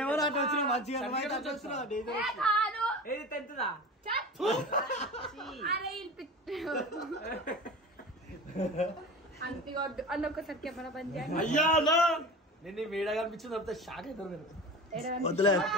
అరే అంతిగొద్దు అన్న ఒకసారి కెమెరా బంద్ చేయండి. అయ్యా నేను వీడియో కనిపించింది అంత షాక్ అవుతారు నేను. వద్దులే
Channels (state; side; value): normal; both; correlation 0.33